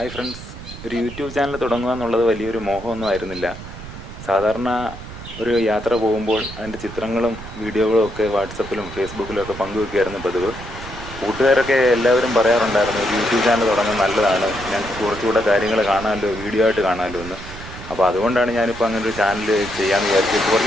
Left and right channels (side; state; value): right; noise; rumble, 13 dB below the sound